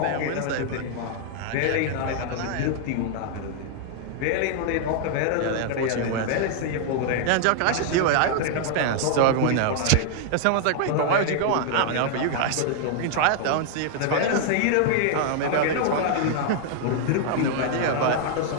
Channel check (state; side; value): different; both; correlation 0.00